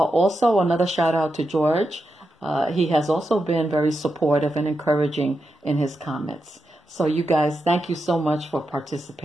another shout out to George. He has also been very supportive and encouraging in his comments. So you guys, thank you so much for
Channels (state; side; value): normal; both; correlation 0.87